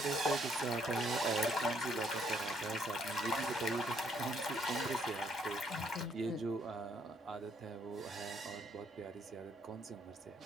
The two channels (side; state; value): both; normal; correlation 0.69